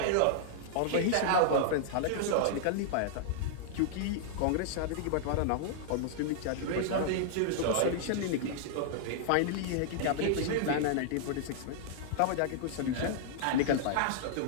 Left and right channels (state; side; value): different; both; correlation -0.01